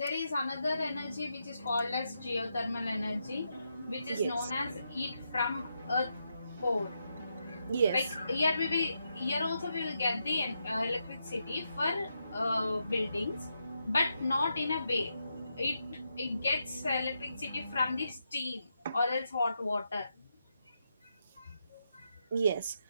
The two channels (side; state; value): both; inverted; correlation -0.83